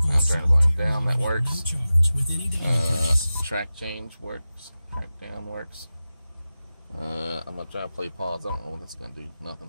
Now I'm turning the volume down. That works. Track change works. Track down works. I'm going to try to play pause. I don't know what that's going to do.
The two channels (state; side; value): inverted; both; correlation -0.95